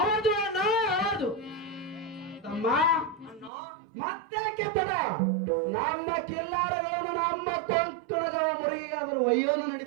ಅಣ್ಣ, ಹೌದು ತಮ್ಮ. ಮತ್ತೆ ಕೆತ್ತಡ ನಮ್ಮ ಕಿಲ್ಲಾರಗಳನ್ನು ನಮ್ಮ ಕೊಂಕಣಗವ ಮುರುಗಿಗಾದರೂ ಒಯ್ಯೋದು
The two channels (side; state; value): left; drops out; at 3.5 s